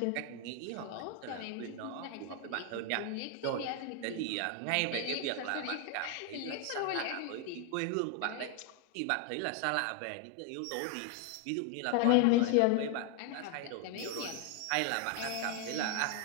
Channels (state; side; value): different; both; correlation 0.01